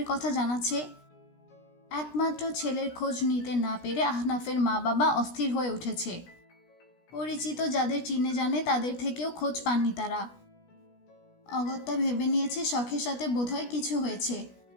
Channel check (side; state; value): right; late; 16 ms